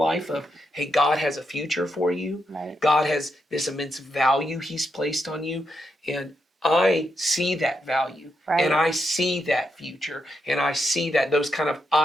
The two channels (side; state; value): both; normal; correlation 0.82